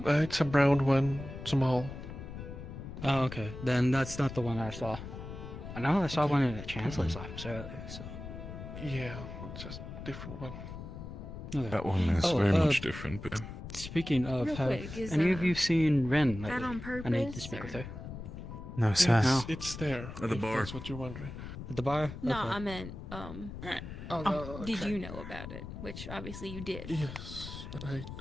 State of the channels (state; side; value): noise; left; rumble, 10 dB below the sound